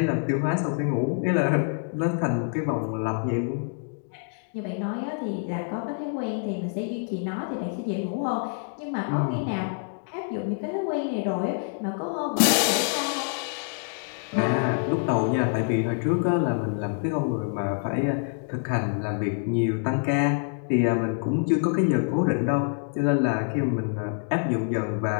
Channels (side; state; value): right; silent; 61 dB below the other